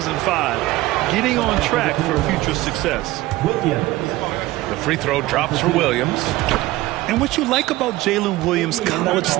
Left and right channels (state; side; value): quieter; left; 17.8 dB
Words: Getting on track for future success. The free throw drops for Williams. And what you like about Jalen Williams' college